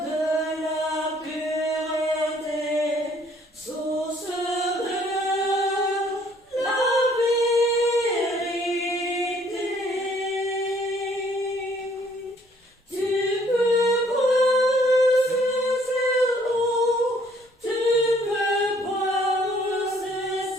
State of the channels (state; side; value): normal; both; correlation 0.62